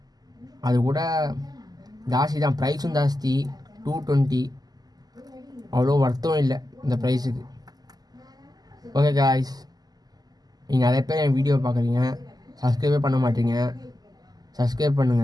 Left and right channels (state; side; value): late; left; 0.19 ms